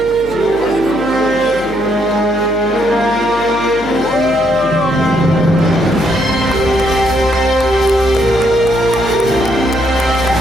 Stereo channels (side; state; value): left; noise; hum, 16 dB below the sound